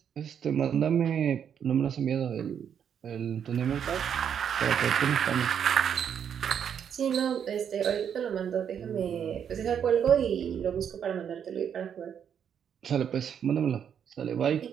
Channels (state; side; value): quieter; left; 8.2 dB